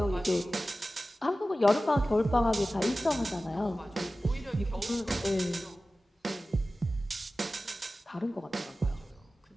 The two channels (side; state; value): both; normal; correlation 0.96